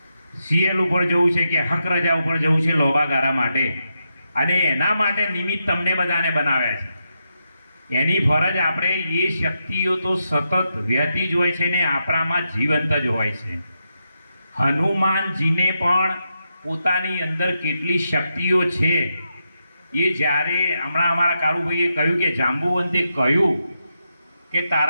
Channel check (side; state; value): both; inverted; correlation -0.85